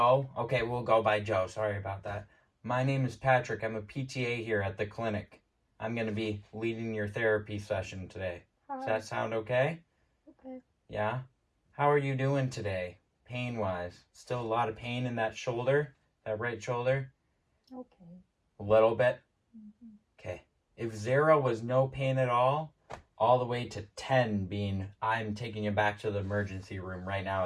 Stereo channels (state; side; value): identical; both; correlation 1.00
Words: Okay, we'll go by Joe. Sorry about that. My name is Patrick. I'm a PTA here at the clinic. I'm going to be leading your therapy session today. Hi. Does that sound okay? Okay. Yeah? How are you doing today, pain-wise? Still a lot of pain in that shoulder? That right shoulder? Okay. A little bit? Mm-hmm. Okay. If 0 was no pain at all the way to 10 being I'm taking you back to the emergency room right now